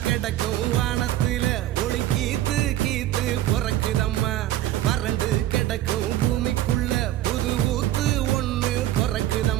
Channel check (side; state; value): left; quieter; 13.8 dB